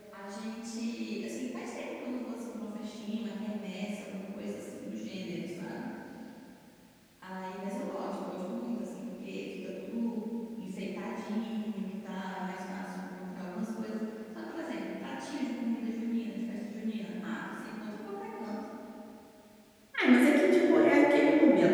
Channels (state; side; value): identical; both; correlation 1.00